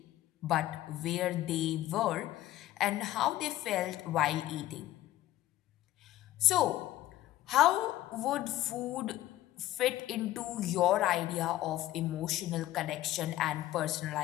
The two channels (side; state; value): right; quieter; 14.8 dB